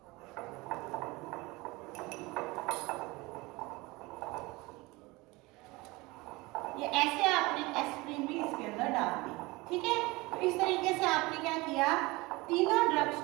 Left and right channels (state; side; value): quieter; left; 22.8 dB